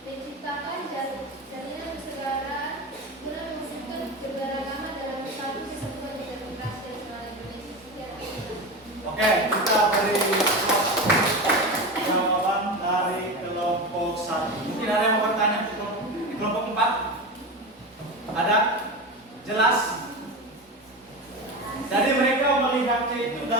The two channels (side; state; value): both; normal; correlation 0.23